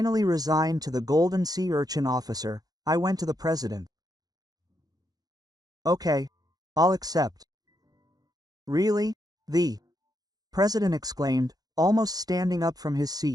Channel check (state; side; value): late; left; 0.18 ms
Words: resigned to the golden sea urchin officer, I went to the president. "Okay, I'll accept." "Really?" the president exclaimed, almost standing up from his